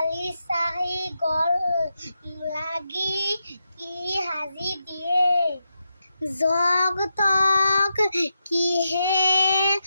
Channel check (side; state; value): both; inverted; correlation -0.86